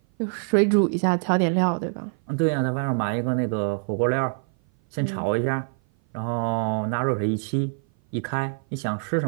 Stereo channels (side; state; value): left; silent; 57 dB below the other